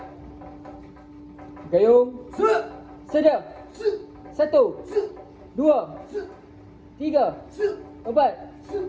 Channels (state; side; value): identical; both; correlation 1.00